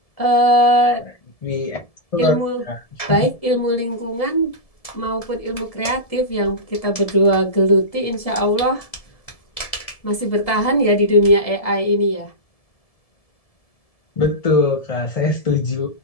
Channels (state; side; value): late; right; 1.7 ms